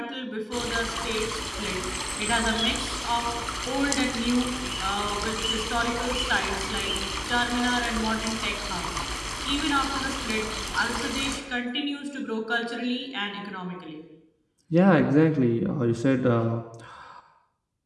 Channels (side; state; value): both; identical; correlation 1.00